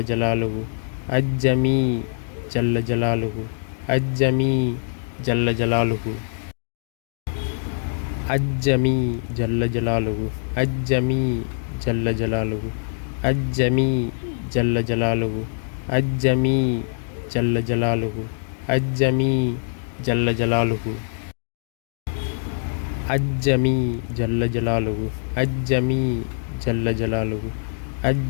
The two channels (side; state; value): right; silent; digital silence